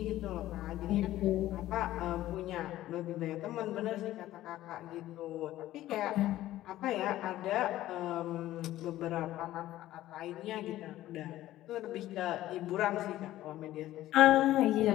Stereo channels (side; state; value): right; quieter; 14.7 dB